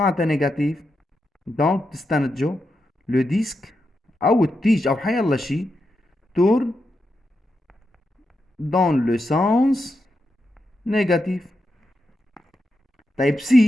معناتها نيجاتيف؟ دونك تستنتجوا لو ديسك أو التيج أو حيالله شي tourne dans le sens négatif. طيب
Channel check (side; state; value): both; normal; correlation 0.86